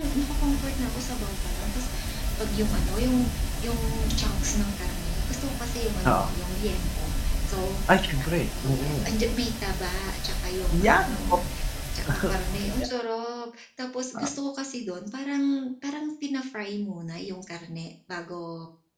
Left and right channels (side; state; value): both; identical; correlation 1.00